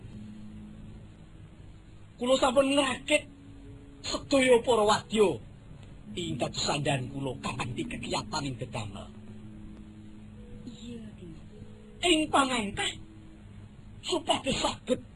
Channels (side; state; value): both; identical; correlation 1.00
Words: Kula sampun ngrakit sedaya para wadya ing dados sandhan kula kanthi kegiatan ing dedamel. Iya, Dimas. Ing pangangkah supados saged